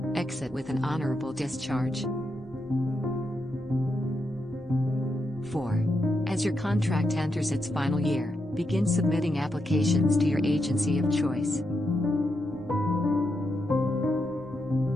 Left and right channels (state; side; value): normal; both; correlation 0.83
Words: exit with an honorable discharge. 4. As your contract enters its final year, begin submitting applications to your agency of choice.